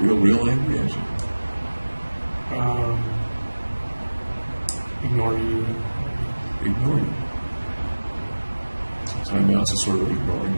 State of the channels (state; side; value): inverted; both; correlation -1.00